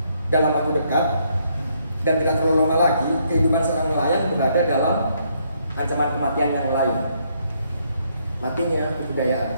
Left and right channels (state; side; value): inverted; both; correlation -0.72